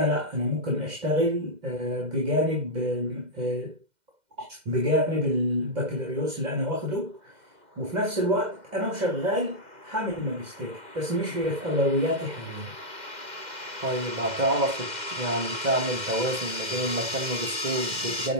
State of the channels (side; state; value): left; late; 2.1 ms